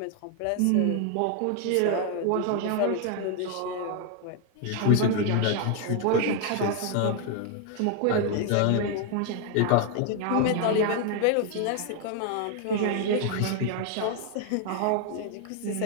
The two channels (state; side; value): different; both; correlation 0.00